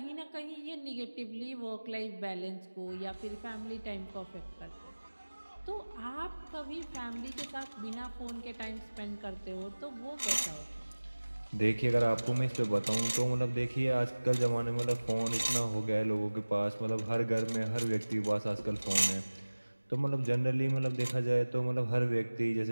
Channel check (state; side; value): inverted; both; correlation -1.00